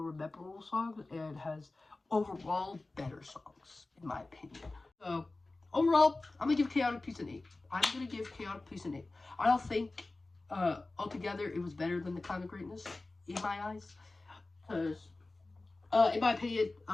memorable songs and has overall better songs, in my opinion. So overall, I'm going to give Chaotic Peace an 8. I'm going to give Chaotic Peace an 8. I don't think altogether it was better than The Climb to Greatness, in my eyes. Because, in my opinion,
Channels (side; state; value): right; quieter; 3.2 dB